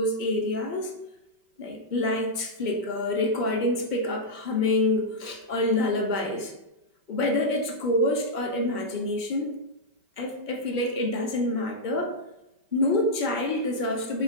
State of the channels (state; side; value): late; left; 5.2 ms